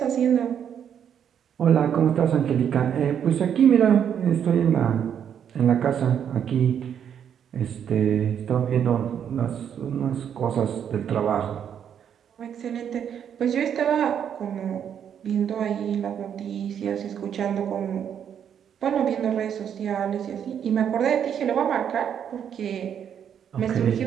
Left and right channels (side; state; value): left; quieter; 8.6 dB